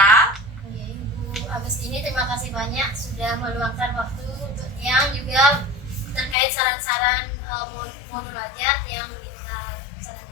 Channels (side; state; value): right; drops out; at 6.4 s